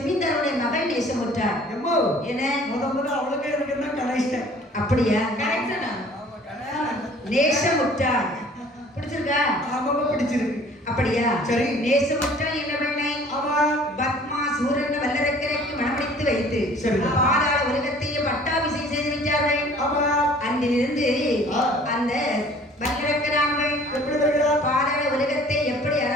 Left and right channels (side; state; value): both; normal; correlation 0.52